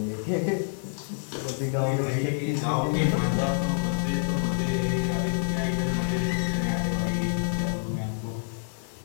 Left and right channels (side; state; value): right; silent; digital silence